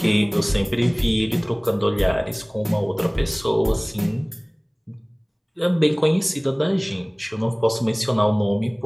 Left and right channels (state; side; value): identical; both; correlation 1.00